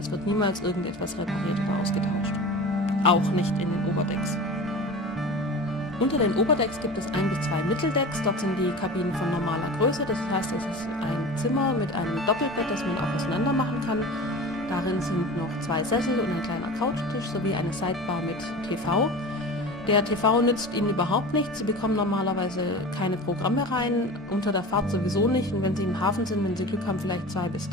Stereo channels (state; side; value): normal; both; correlation 0.34